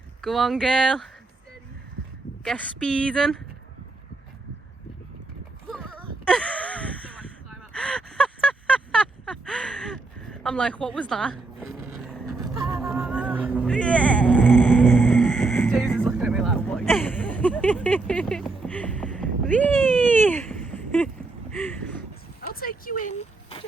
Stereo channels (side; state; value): left; quieter; 3.5 dB